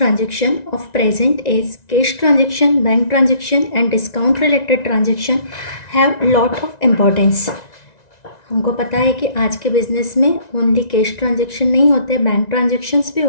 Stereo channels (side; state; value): right; late; 1.9 ms